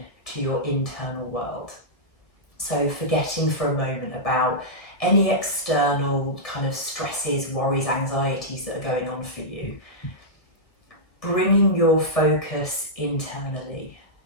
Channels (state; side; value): late; right; 1.4 ms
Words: to your internal world. So forgetting for a moment about any external kind of stresses, worries, anxieties that are going on for you. Bringing your focus internally.